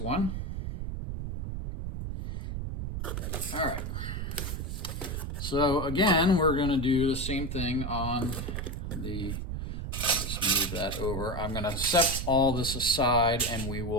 All right. So again, we're going to do the same thing on the, I'll just move that over. I'm going to set all this aside, and we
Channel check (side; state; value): right; noise; rumble, 4 dB below the sound